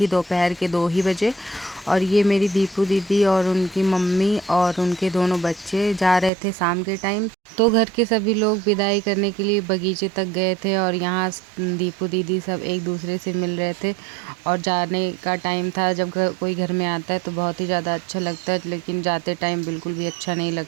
दोपहर के 2 ही बजे। और ये मेरी दीपू दीदी और उनकी मम्मी और उनके दोनों बच्चे जा रहे थे शाम के टाइम। तो घर के सभी लोग विदाई करने के लिए बगीचे तक गए थे, और यहाँ दीपू दीदी सब एक दूसरे से मिल रहे थे। और जाने का टाइम था। जब कोई घर में आता है तो बहुत ही ज़्यादा अच्छा लगता है, लेकिन जाते टाइम बिल्कुल भी अच्छा नहीं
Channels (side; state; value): left; drops out; at 6.3 s